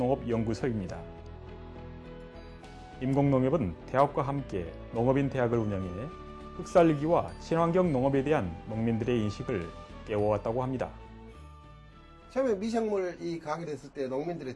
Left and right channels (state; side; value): identical; both; correlation 1.00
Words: 임곡농협은 대학과 함께 농업인 대학을 운영해 흙살리기와 친환경 농업에 대한 농민들의 인식을 깨워왔다고 합니다. 처음에 미생물 이 가게 됐을 때